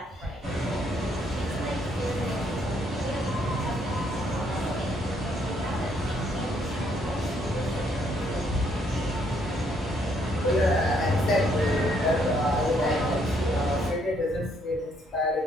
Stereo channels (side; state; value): both; normal; correlation 0.70